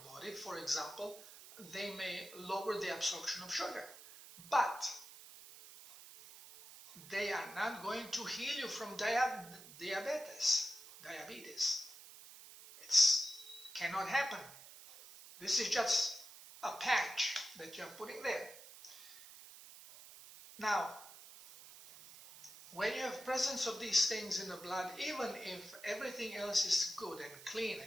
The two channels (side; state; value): right; noise; hiss, 17 dB below the sound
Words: body. For example, they may lower the absorption of sugar, but they are not going to heal you from diabetes. It cannot happen. This is just a patch that you're putting there. Now, when you have presence of these things in the blood, even if everything else is good and clean